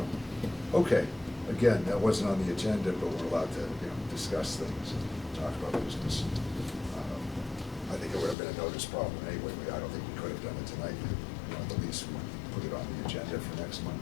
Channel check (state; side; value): drops out; right; at 8.3 s